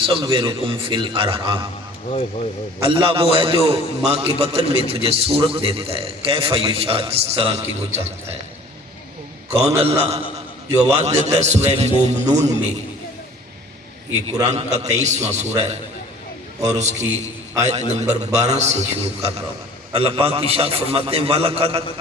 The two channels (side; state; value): both; normal; correlation 0.49